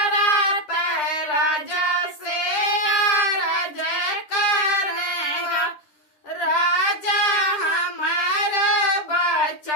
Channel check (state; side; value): late; right; 10 ms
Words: राजा से अरज करेगा राजा हमार